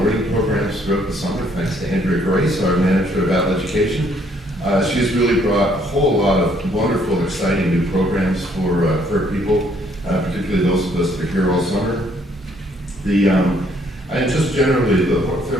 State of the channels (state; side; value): normal; both; correlation 0.66